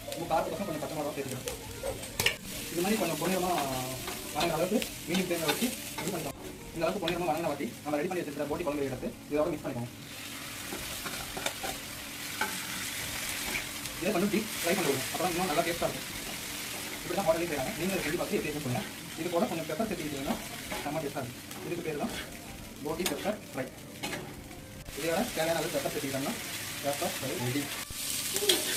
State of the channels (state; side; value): identical; both; correlation 1.00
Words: உங்கள் காரத்துக்கு கொஞ்சம் பச்சை மிளகாய் சேர்த்துக்கலாம். இது மாதிரி கொஞ்சம் பொன்னிறமாக வதங்கிற அளவுக்கு மீடியம் ஃப்ளேமில் வச்சு இது பண்ணிக்கலாம். இந்த அளவுக்கு பொன்னிறமாக வதங்கின வாட்டி நம்ம ரெடி பண்ணி வச்சிருக்கிற போட்டி குழம்பு எடுத்து இதோட மிக்ஸ் பண்ணிக்கோங்க. இதை கொஞ்சம் டீப் ஃப்ரை பண்ணுவோம். அப்புறம் இன்னும் நல்லா டேஸ்ட்டாக இருக்கும். இப்படி தான் ஹோட்டலே செய்கிறாங்க. நீங்கள் ரெடி பார்த்து எப்படி பண்ணுங்கள். இது கூட கொஞ்சம் பெப்பர் சேர்த்துக்கிட்டீங்கன்னா செம்ம டேஸ்ட்டாக இருக்கும். இதுக்கு பேர் தான் போட்டி பெப்பர் ஃப்ரை. இதோட தேவையான அளவு பெப்பர் சேர்த்துக்கிட்டோம்னா பெப்பர் ஃப்ரை ரெடி.